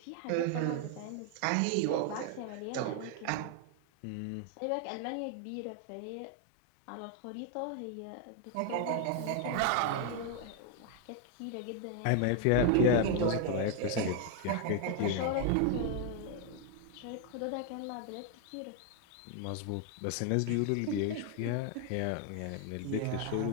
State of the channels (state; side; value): different; both; correlation 0.01